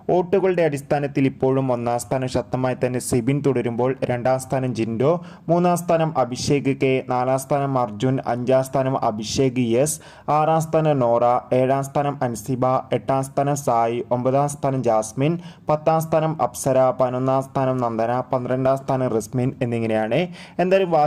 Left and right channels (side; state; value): both; identical; correlation 1.00